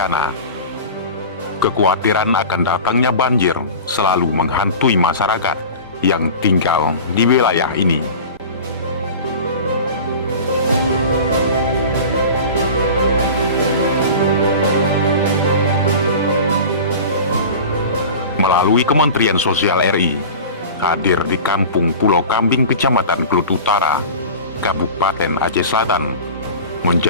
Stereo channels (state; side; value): inverted; both; correlation -0.35